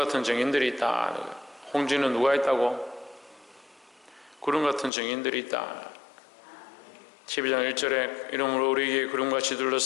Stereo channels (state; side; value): drops out; right; at 4.9 s